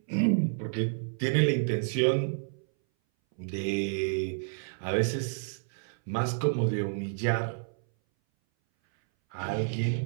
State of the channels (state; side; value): silent; left; 58 dB below the other